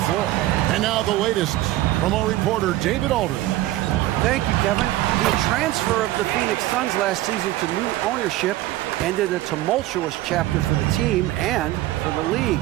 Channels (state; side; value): quieter; left; 15.8 dB